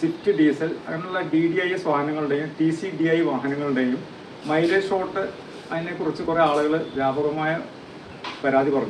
diesel അങ്ങനെയുള്ള DDIS വാഹനങ്ങളുടെയും TCDI വാഹനങ്ങളുടെയും മൈലേജ് ഷോട്ട് അതിനെക്കുറിച്ച് കുറേ ആളുകൾ വ്യാപകമായ പരാതി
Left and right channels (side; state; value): both; identical; correlation 1.00